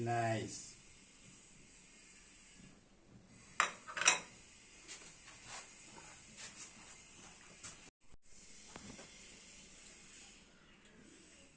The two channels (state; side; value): identical; both; correlation 1.00